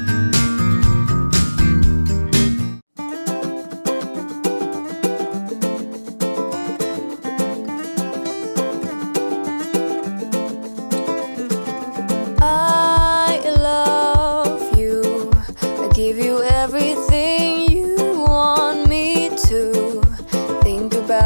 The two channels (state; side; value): inverted; both; correlation -1.00